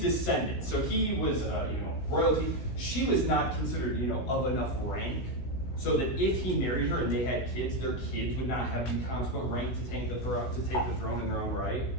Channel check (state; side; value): late; right; 16 ms